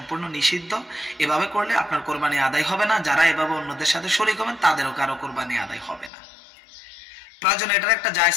নিষিদ্ধ। এভাবে করলে আপনার কোরবানি আদায় হবে না, যারা এভাবে অন্যদের সাথে শরীক হবেন তাদেরও কারো কোরবানি আদায় হবে না। প্রয়োজন এটার একটা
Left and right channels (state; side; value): drops out; right; at 6.1 s